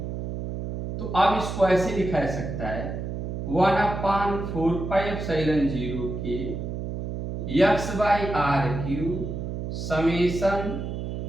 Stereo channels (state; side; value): noise; right; hum, 5 dB below the sound